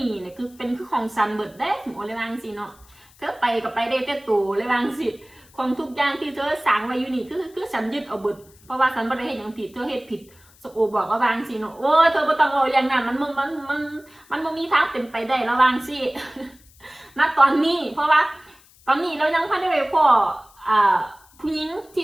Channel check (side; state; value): left; noise; hiss, 28 dB below the sound